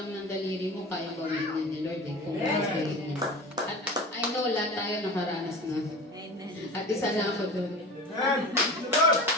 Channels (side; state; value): both; normal; correlation 0.33